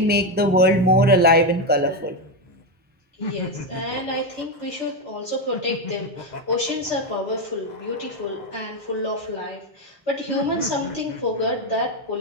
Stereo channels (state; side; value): normal; both; correlation 0.09